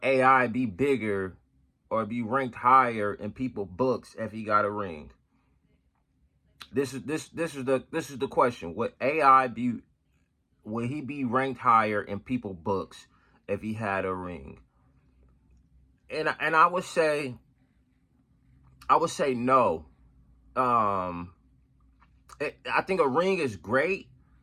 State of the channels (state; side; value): identical; both; correlation 1.00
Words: AI be bigger or be ranked higher in people's books if he got a ring? This is the question. Will he be ranked higher in people's books if he had a ring? And I would say no. I think a ring is great.